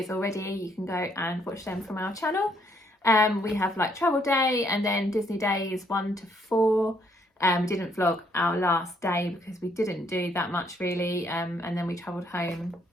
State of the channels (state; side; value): normal; both; correlation 0.69